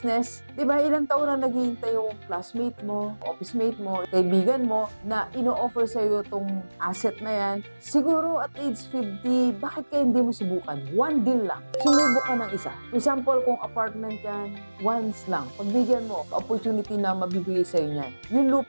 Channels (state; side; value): inverted; both; correlation -1.00